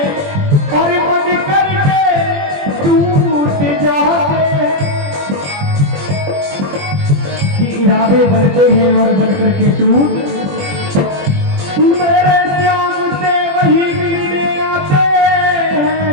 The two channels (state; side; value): late; left; 21 ms